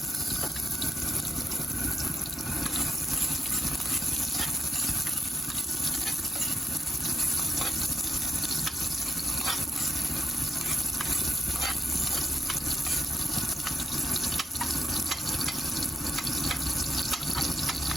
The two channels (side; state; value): both; normal; correlation 0.81